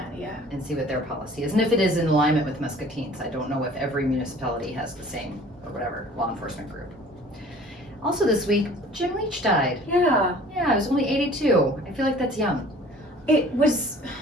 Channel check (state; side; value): normal; both; correlation 0.49